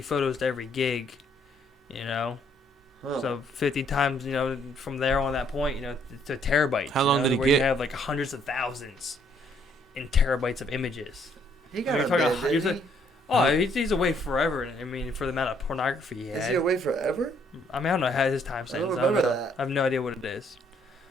photos to every gig. You know. Huh. So 50 times, from there on that point, to terabytes. How long did he where get? You have like hundreds of thousands in terabytes of images. He got You're a talking bid, about- didn't you're he? He's away forever. I mean, for the amount of pornography he Is had. he away forever? I mean, I don't know how his time I don't sentence. remember know. that. I have no idea what it is.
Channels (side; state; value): both; normal; correlation 0.67